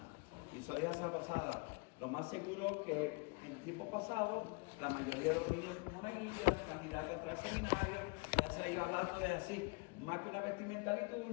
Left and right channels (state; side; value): quieter; right; 30.1 dB